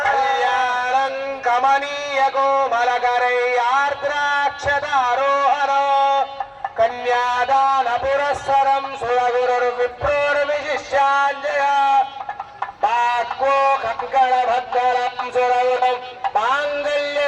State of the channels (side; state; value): both; identical; correlation 1.00